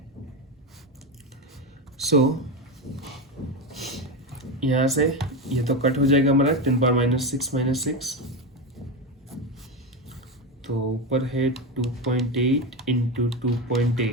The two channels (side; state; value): both; normal; correlation 0.15